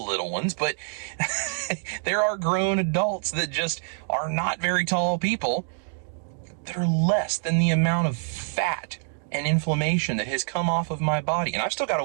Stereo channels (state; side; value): silent; left; digital silence